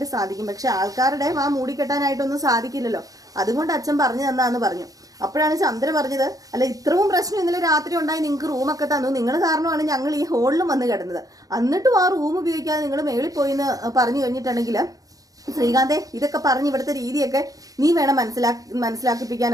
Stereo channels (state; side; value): late; left; 0.17 ms